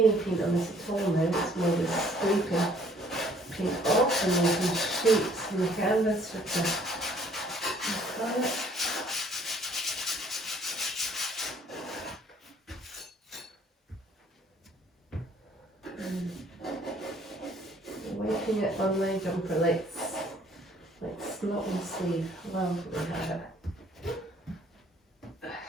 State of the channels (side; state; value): both; normal; correlation 0.60